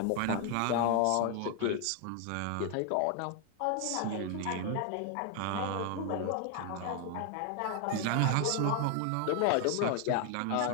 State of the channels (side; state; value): both; different; correlation 0.01